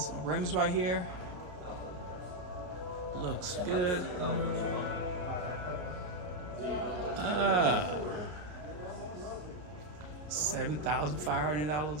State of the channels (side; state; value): left; late; 33 ms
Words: rims right here. Looks good.